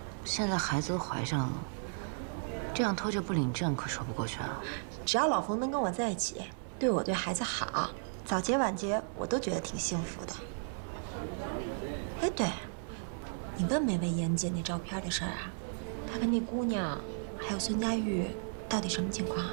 现在孩子都怀上了，这样拖着不领证可说不过去啊。只要老冯能跟我在一起，对我对孩子好，早结晚结我都觉得挺幸福的。哎，对，你问没问严姐那照片的事儿啊？她跟那姑娘还有孙佳玉到底什么情况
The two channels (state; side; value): silent; left; 55 dB below the other